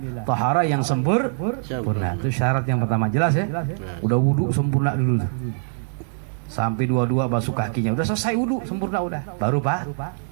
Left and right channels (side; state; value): left; silent; digital silence